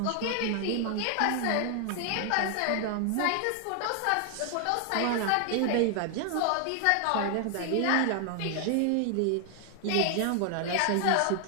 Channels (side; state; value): both; different; correlation 0.00